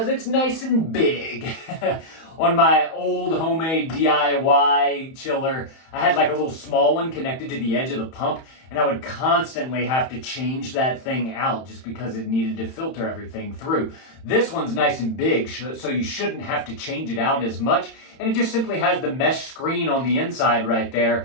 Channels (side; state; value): right; late; 31 ms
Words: it's nice and big. On my old homemade DIY chiller, I had like a little small one connected to the edge of the pump, and I would constantly have to change that thing out just because it needed to filter everything through. This one's nice and big, so you shouldn't have to change it out as much, and it just simply has the mesh screen on the inside right